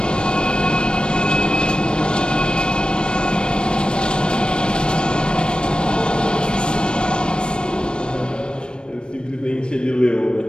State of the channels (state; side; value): late; right; 0.053 ms